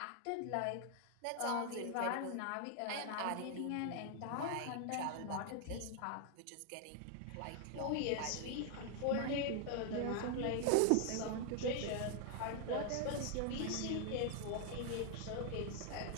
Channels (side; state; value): both; different; correlation 0.00